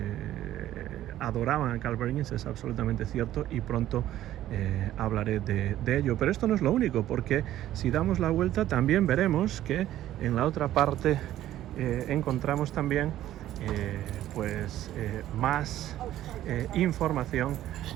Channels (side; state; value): left; quieter; 13.2 dB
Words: adoraban a Carl Perkins es absolutamente cierto, y pronto hablaré de ello. Pero esto no es lo único, porque si damos la vuelta también veremos que en la otra parte encontramos también más información